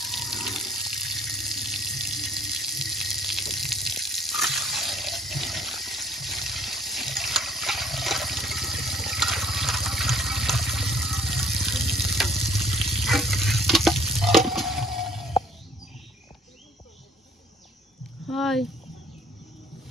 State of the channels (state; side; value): normal; both; correlation 0.57